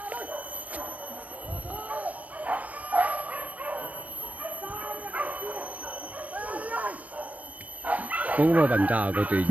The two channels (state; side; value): late; left; 0.076 ms